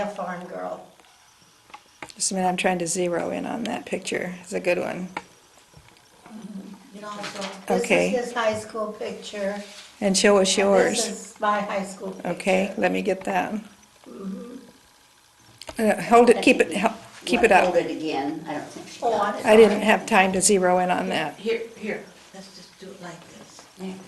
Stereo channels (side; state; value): both; identical; correlation 1.00